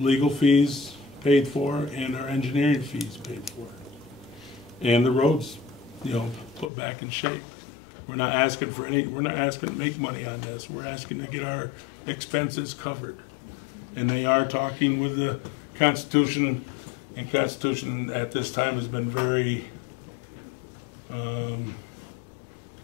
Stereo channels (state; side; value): drops out; right; at 6.7 s